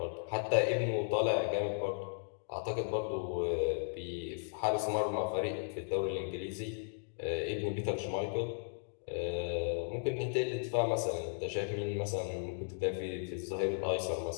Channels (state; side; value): silent; right; digital silence